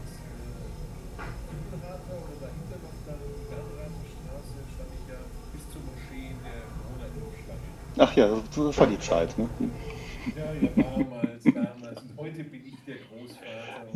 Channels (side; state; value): both; identical; correlation 1.00